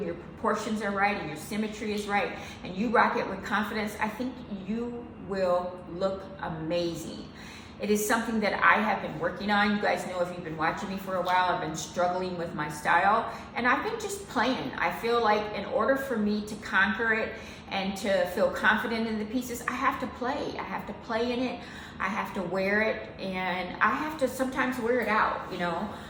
your proportions are right and your symmetry is right and you rock it with confidence, I think you will look amazing. It is something that I have been working on. You guys know if you've been watching me for a while, I've been struggling with my style and I've been just playing. I feel like in order for me to conquer it and to feel confident in the pieces, I have to play. I have to play in it. I have to wear it and I have to sometimes wear it out, you know.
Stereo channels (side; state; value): both; identical; correlation 1.00